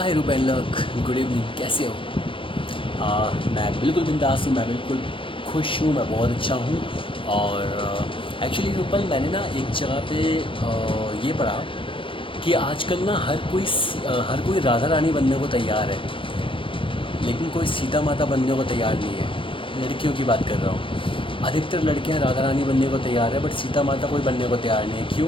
हाय रूपेन लोग, good evening. कैसे हो? मैं बिल्कुल बिंदास हूँ, मैं बिल्कुल खुश हूँ, मैं बहुत अच्छा हूँ। और एक्चुअली रूपल, मैंने ना एक जगह पे ये पढ़ा कि आजकल ना हर कोई राधा रानी बनने को तैयार है, लेकिन कोई सीता माता बनने को तैयार नहीं है। लड़कियों की बात कर रहा हूँ। अधिकतर लड़कियाँ राधा रानी बनने को तैयार है, बट सीता माता कोई बनने को तैयार नहीं है। क्यों?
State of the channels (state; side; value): late; right; 0.25 ms